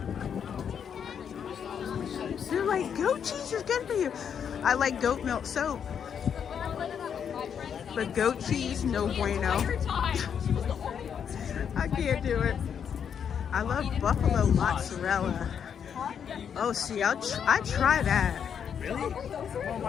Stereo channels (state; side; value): quieter; right; 7.8 dB